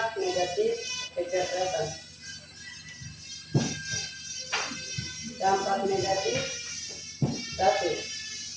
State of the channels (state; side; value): identical; both; correlation 1.00